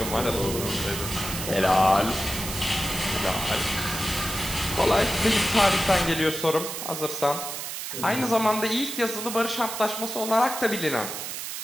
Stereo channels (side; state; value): right; noise; hiss, 6 dB below the sound